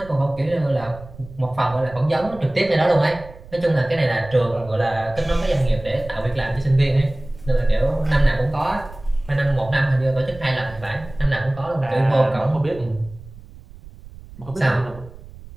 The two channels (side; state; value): right; noise; rumble, 18 dB below the sound